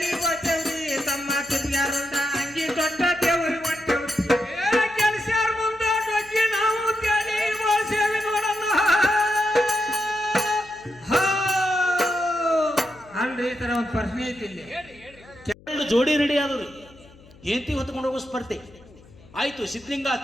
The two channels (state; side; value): noise; left; hum, 24 dB below the sound